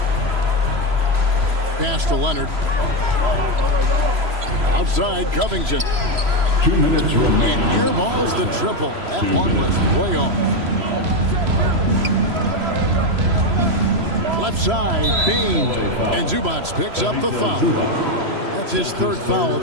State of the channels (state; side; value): late; left; 3.0 ms